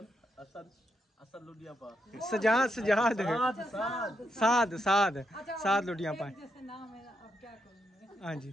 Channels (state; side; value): normal; both; correlation 0.81